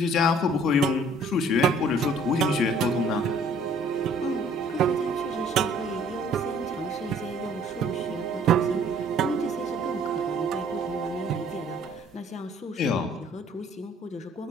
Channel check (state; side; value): normal; both; correlation 0.57